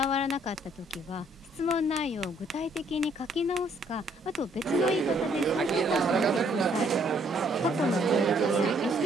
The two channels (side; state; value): both; normal; correlation 0.66